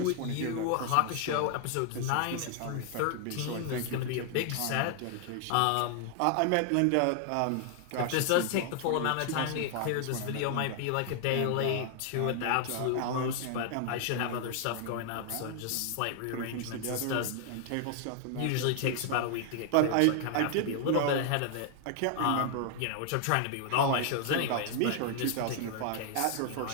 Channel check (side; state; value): both; different; correlation 0.00